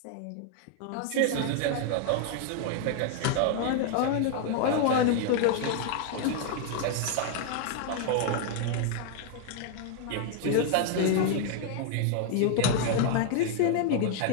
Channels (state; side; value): different; both; correlation 0.00